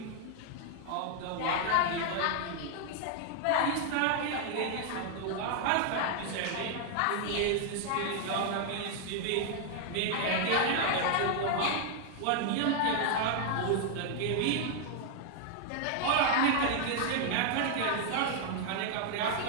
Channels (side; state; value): both; different; correlation 0.00